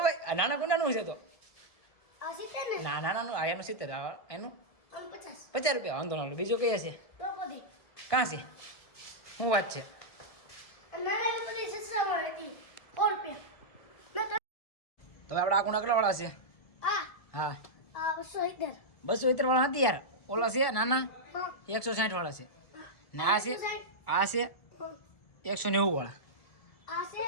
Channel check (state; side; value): late; right; 1.7 ms